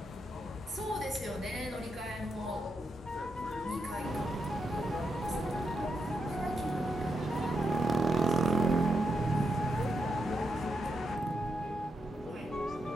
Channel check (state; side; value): normal; both; correlation 0.83